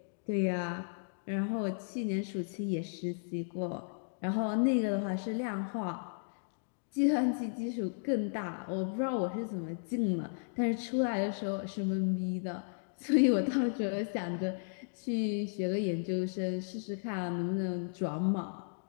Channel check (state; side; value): silent; right; digital silence